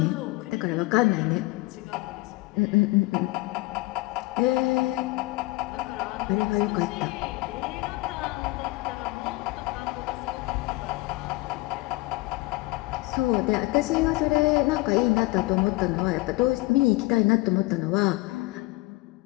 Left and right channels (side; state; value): right; quieter; 22.1 dB